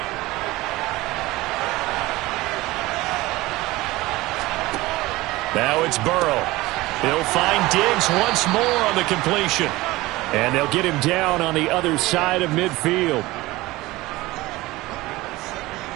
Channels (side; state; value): left; quieter; 19.5 dB